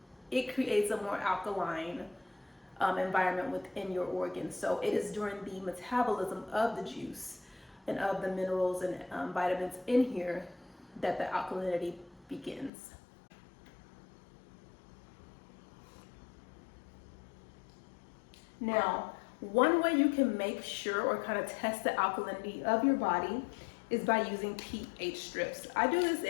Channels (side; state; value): right; drops out; at 12.7 s